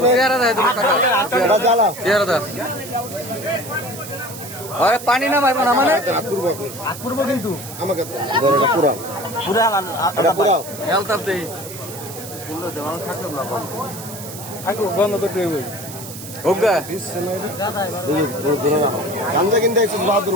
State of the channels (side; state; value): right; noise; hiss, 12 dB below the sound